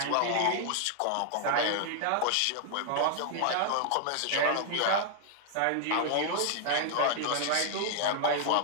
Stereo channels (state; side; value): different; both; correlation 0.00